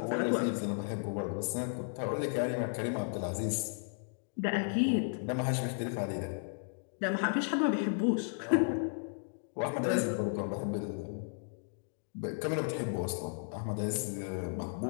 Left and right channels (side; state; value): right; silent; digital silence